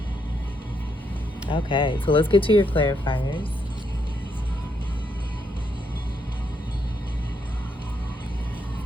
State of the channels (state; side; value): normal; both; correlation 0.77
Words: Okay, so let's get to your clarifiers.